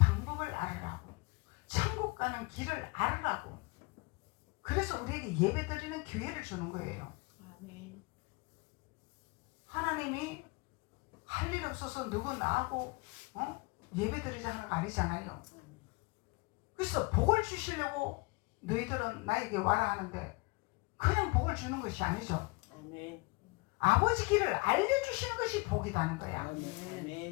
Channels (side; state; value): right; quieter; 26.4 dB